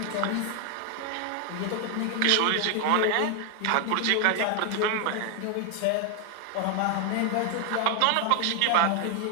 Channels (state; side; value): different; both; correlation 0.00